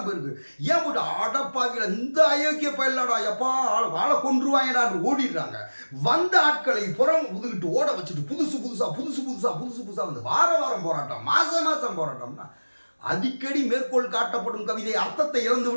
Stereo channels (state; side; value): inverted; both; correlation -1.00